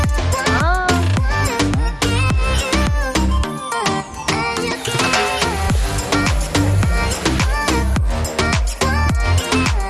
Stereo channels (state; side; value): identical; both; correlation 1.00